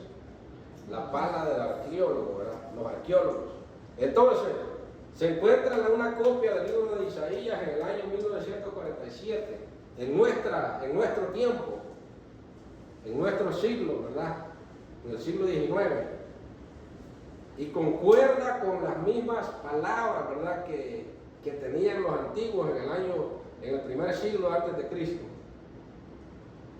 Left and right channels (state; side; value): identical; both; correlation 1.00